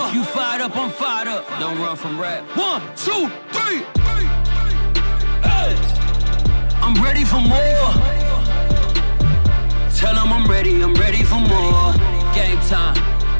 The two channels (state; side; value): inverted; both; correlation -1.00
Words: You fired up, I'm fired up. Don't run from rap. 1, 2, 3. Hey. I'm ready for more. Tell them I'm ready for more. Game time.